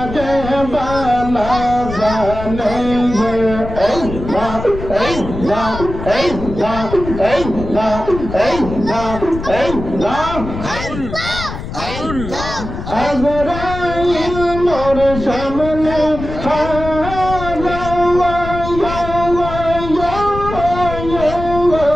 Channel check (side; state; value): left; noise; rumble, 8 dB below the sound